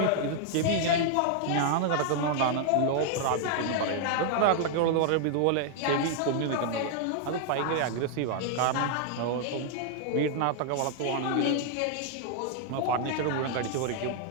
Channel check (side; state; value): both; different; correlation 0.00